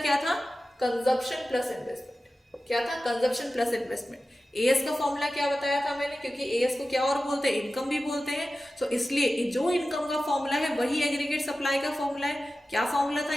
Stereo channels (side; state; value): both; normal; correlation 0.94